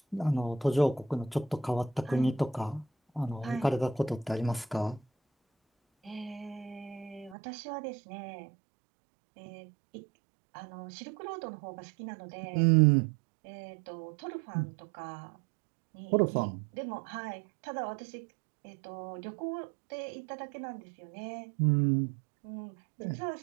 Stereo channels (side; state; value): left; drops out; at 7.4 s